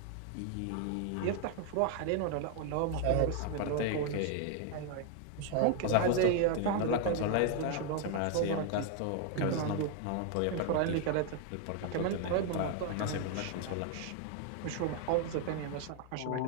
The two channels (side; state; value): both; different; correlation 0.00